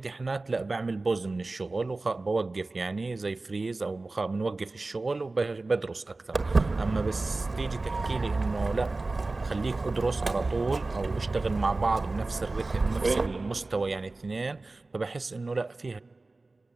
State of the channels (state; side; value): quieter; left; 3.3 dB